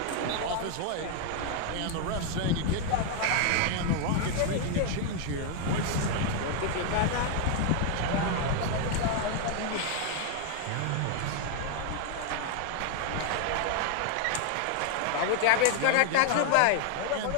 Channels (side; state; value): both; different; correlation 0.00